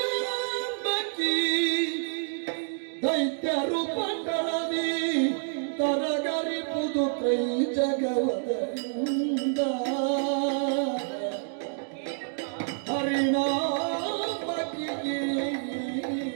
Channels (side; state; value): left; silent; digital silence